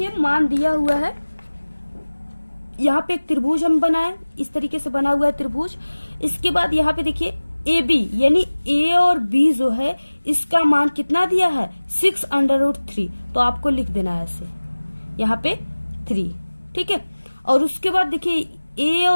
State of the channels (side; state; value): both; inverted; correlation -1.00